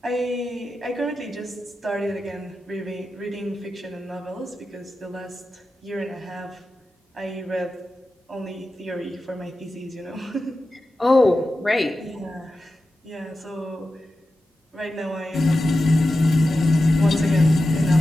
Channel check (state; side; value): normal; both; correlation 0.92